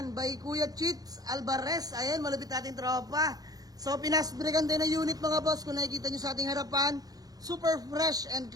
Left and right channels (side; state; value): left; late; 0.18 ms